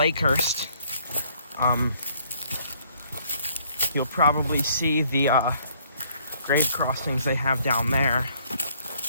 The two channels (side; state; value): both; inverted; correlation -0.64